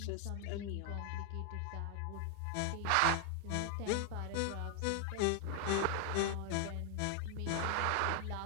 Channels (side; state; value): both; different; correlation 0.00